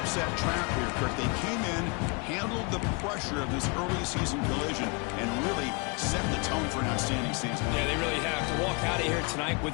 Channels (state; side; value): quieter; right; 31.7 dB